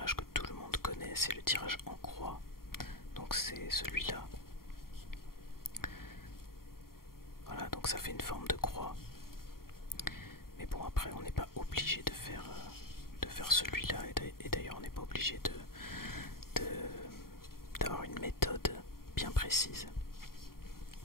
que tout le monde connaît, c'est le tirage en croix. Donc c'est celui-là. Voilà, donc ça fait une forme de croix. Mais bon, après on n'est pas obligé de faire celui-là, et d'ailleurs on n'est pas obligé d'avoir une méthode bien précise.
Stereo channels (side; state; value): right; late; 0.93 ms